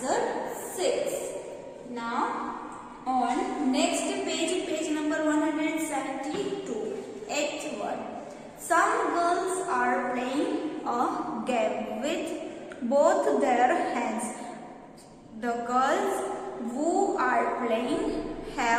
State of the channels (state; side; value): identical; both; correlation 1.00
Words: 6. Now On next page, page number 172, 8th one. Some girls are playing a game with both their hands. The girls who are playing